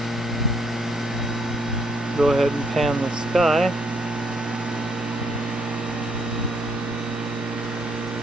Go ahead and pan the sky.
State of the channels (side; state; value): both; normal; correlation 0.71